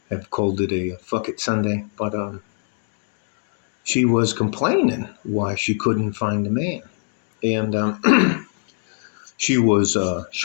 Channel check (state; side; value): silent; right; 63 dB below the other